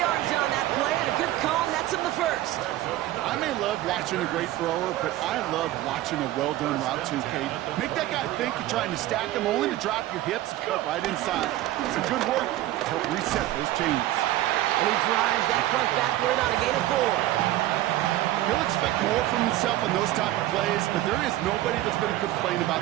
on that play, and a good call nets him the first. I may love watching a great thrower, but I love watching a well-done route too, Kate. Make that guy think you're trying to stack him, only to drop your hips and cut right inside. Some good work to help reset those chains. And he drives that front backward on a gain of 4. He'll expect more from himself on those type of plays, but there is nobody that's going to complain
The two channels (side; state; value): left; quieter; 15.1 dB